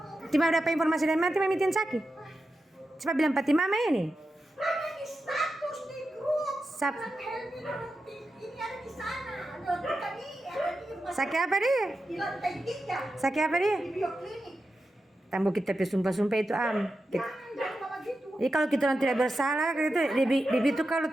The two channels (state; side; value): normal; both; correlation 0.90